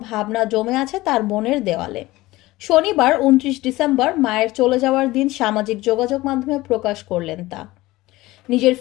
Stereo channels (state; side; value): quieter; right; 18.7 dB